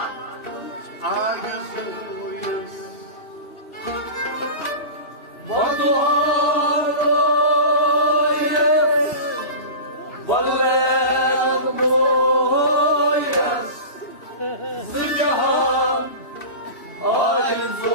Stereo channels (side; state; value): right; late; 3.0 ms